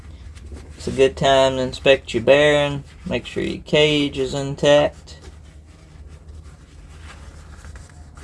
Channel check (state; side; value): identical; both; correlation 1.00